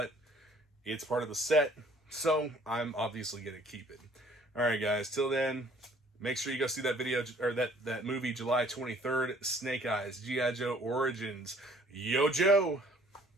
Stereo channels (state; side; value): normal; both; correlation 0.57